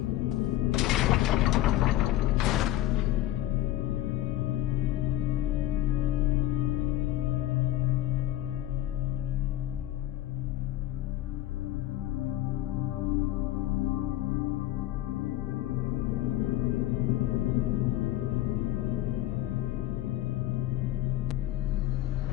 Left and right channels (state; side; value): quieter; right; 14.2 dB